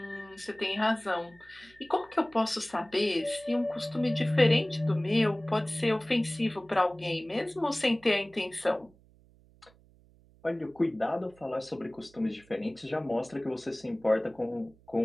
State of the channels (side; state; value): right; noise; hum, 28 dB below the sound